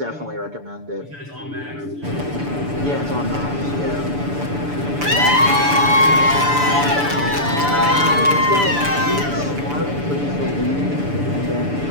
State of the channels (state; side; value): late; left; 6.9 ms